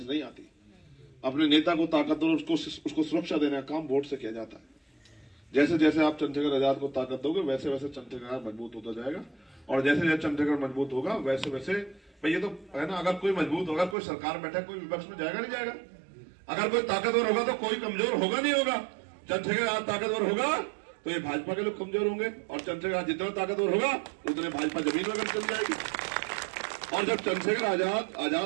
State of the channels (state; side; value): drops out; left; at 14.0 s